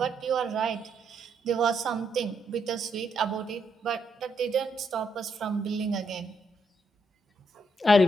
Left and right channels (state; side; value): normal; both; correlation 0.77